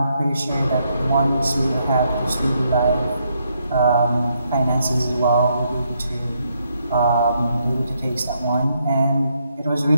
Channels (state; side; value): inverted; both; correlation -0.76